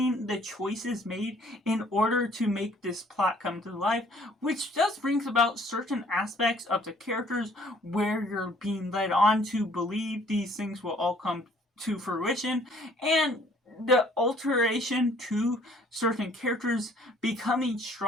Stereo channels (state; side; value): normal; both; correlation 0.59